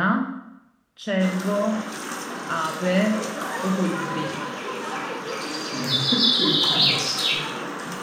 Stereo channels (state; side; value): identical; both; correlation 1.00